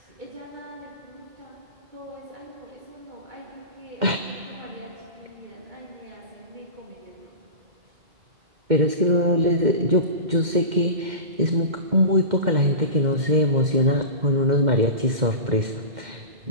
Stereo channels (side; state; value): left; late; 2.1 ms